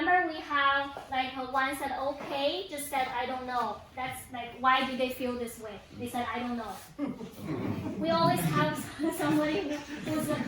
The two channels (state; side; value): identical; both; correlation 1.00